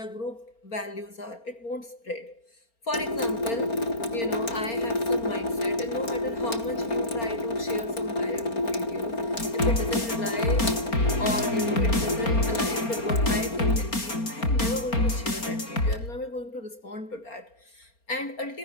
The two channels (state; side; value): late; right; 4.3 ms